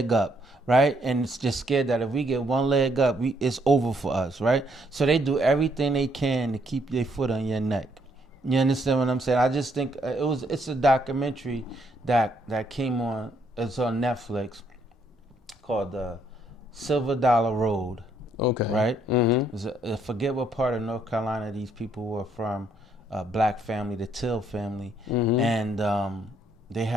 up, right? And it's just scared that if we get one leg up, it's over for us, right? So they do everything they can to keep their foot on your neck. You understand what I'm saying? I just think it's a documentary that came on. It's on Netflix called Silver Dollar Road. Okay. Right? I forget what part of North Carolina these people were from. Black family, the Till family, and they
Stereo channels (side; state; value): both; normal; correlation 0.70